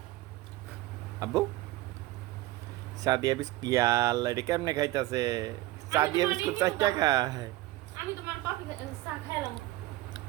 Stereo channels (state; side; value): quieter; left; 18.0 dB